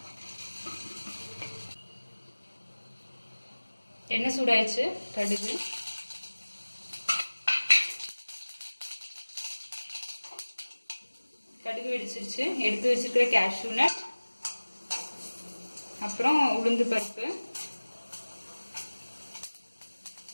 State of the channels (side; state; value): both; inverted; correlation -1.00